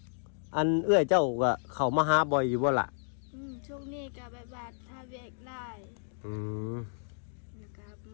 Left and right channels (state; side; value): silent; right; digital silence